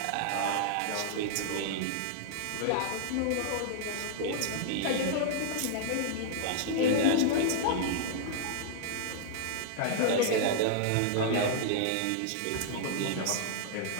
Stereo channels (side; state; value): both; different; correlation -0.01